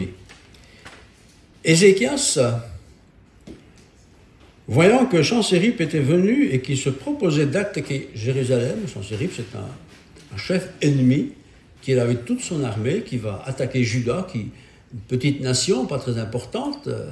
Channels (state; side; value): identical; both; correlation 1.00